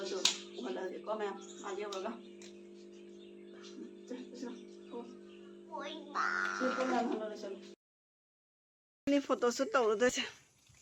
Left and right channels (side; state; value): both; identical; correlation 1.00